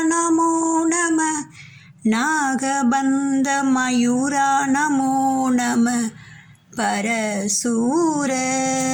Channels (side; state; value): both; identical; correlation 1.00